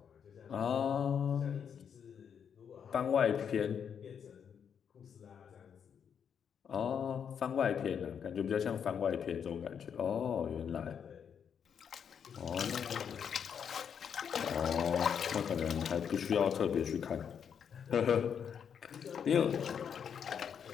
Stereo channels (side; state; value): right; quieter; 7.6 dB